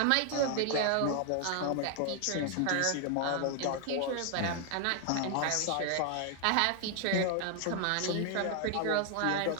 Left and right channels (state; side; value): different; both; correlation 0.00